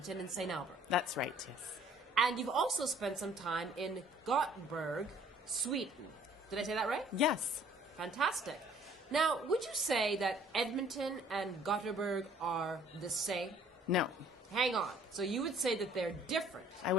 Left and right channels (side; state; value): both; normal; correlation 0.56